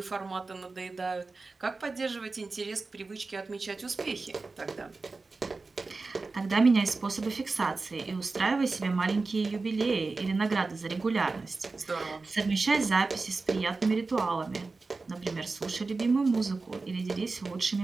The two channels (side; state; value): left; quieter; 3.8 dB